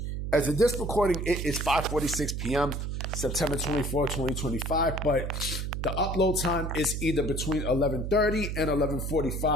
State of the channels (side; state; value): right; noise; hum, 3 dB below the sound